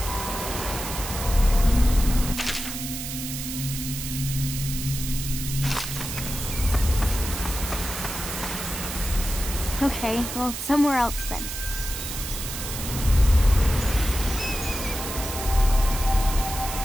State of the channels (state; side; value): noise; right; hiss, 7 dB below the sound